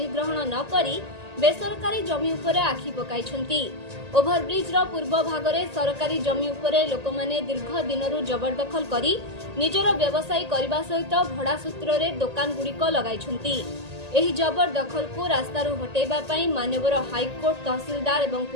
न करी बेसरकारी जमी उपरे आखि पकाइछन्ति। ओभरब्रिज रो पूर्व भागरे सरकारी जमी उपरे लोकमाने दीर्घ दिनरु जबरदखल करी निजर व्यवसाय करबा सहित भड़ा सूत्र रे दुकान गुड़िक लगाइछन्ति। एही जबरदखल को रास्तारु हटेबा पई माननीय हाईकोर्ट तहसीलदार एवं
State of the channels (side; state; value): left; late; 1.8 ms